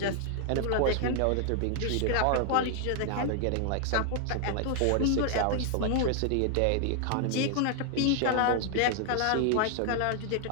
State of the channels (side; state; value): both; different; correlation 0.00